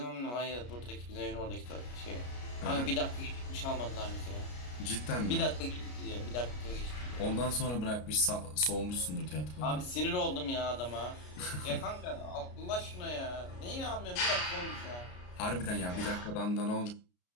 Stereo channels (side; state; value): right; late; 33 ms